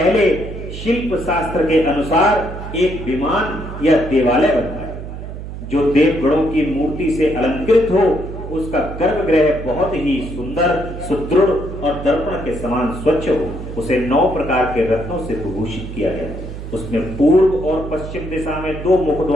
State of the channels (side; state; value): right; noise; hum, 9 dB below the sound